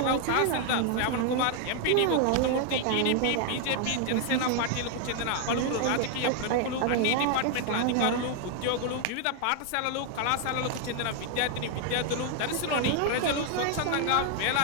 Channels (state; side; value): different; both; correlation 0.00